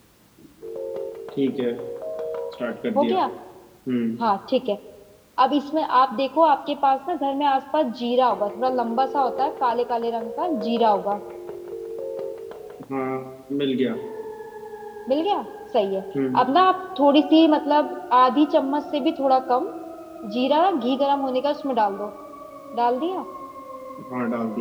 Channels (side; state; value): both; identical; correlation 1.00